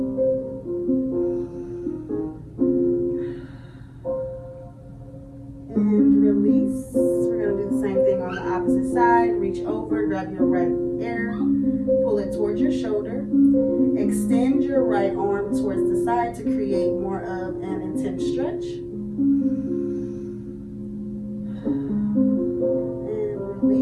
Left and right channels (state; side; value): identical; both; correlation 1.00